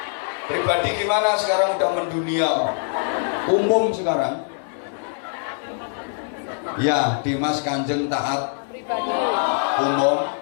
Pribadi gimana sekarang udah mendunia, umum sekarang. Ya, Dimas Kanjeng Taat Umum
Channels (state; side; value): silent; right; 63 dB below the other